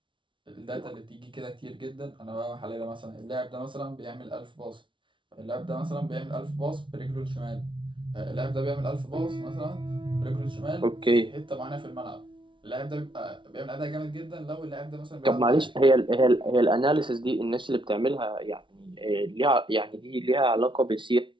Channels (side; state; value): left; late; 0.24 ms